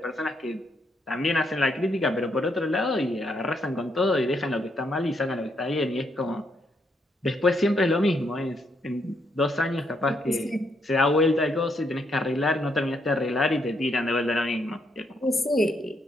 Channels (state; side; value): normal; both; correlation 0.76